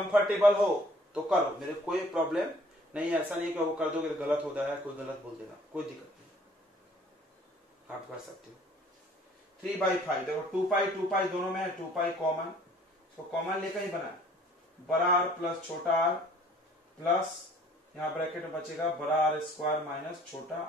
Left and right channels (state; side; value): normal; both; correlation 0.55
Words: हो तो करो, मेरे कोई प्रॉब्लम नहीं है। ऐसा नहीं कि वो कर दोगे तो गलत हो जाएगा, कोई गलत बोल देगा, कोई दिक्कत नहीं, आप कर सकते हो। 3/5 देखो 2 पाई दोनों में है, 2 पाई कॉमन, तो कॉमन लेकर ही बना, बड़ा R प्लस छोटा R प्लस यहां ब्रैकेट में बचेगा बड़ा R स्क्वायर माइनस छोटा